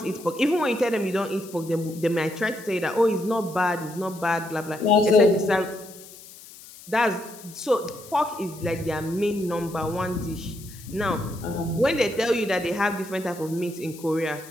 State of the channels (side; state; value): left; noise; hiss, 18 dB below the sound